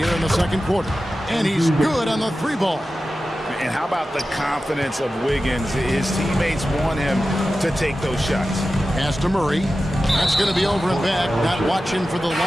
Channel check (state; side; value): normal; both; correlation 0.93